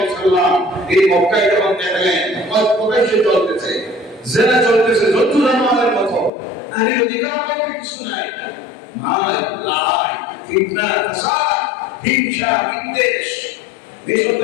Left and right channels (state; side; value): drops out; right; at 6.3 s